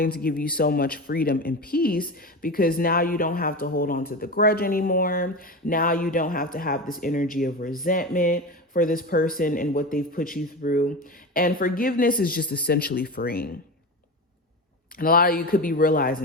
to give you so much freedom and peace because now you don't have to hold on to the grudge anymore. Now you don't have to have this energy of resentment for this person and what they've put you through. And forgiveness is just essentially freeing. And a lot of you could be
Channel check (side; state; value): both; normal; correlation 0.25